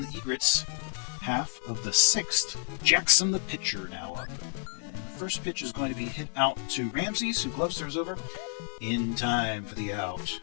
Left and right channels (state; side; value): silent; right; 55 dB below the other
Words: the Egrets half of the 6th. Jackson, the pitcher, now up. And the first pitch is going to be hit out to Ramses, who gloves throws over in time for the out.